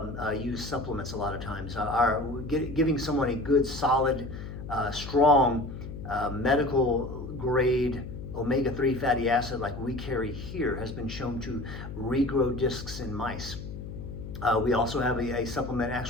use supplements a lot of times. Giving someone a good, solid, strong, medical grade omega-3 fatty acid like we carry here has been shown to regrow discs in mice. We also have a supplement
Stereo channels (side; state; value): left; noise; hum, 9 dB below the sound